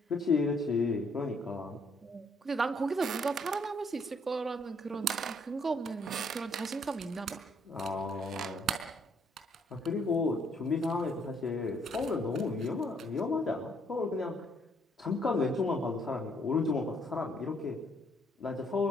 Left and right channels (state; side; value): normal; both; correlation 0.68